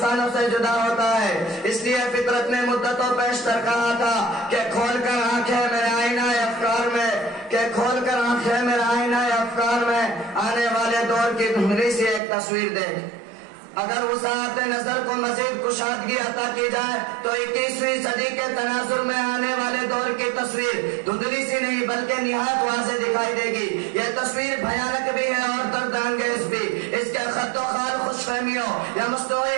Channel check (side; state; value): left; drops out; at 12.2 s